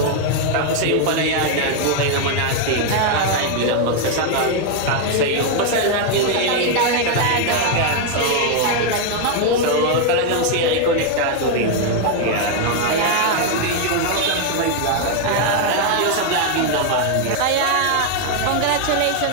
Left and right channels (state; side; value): different; both; correlation 0.00